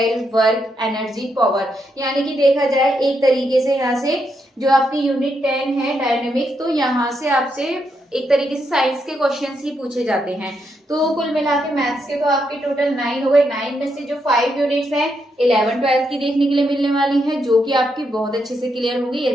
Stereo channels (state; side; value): normal; both; correlation 0.80